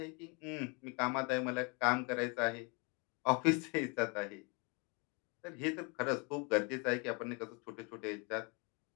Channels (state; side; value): quieter; right; 31.7 dB